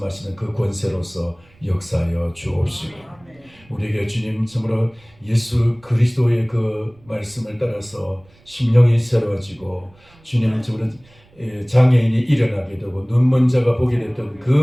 그 권세로서 역사하여 주옵시고, 우리에게 주님 정말로 예수 그리스도의 그 말씀을 따라서 심령이 새로워지고, 주님 정말 장애인이 일어나게 되고 눈먼 자가 보게 됐던 그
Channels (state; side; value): noise; right; rumble, 29 dB below the sound